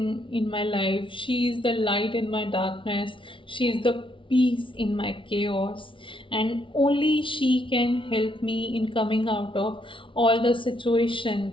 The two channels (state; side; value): late; right; 0.25 ms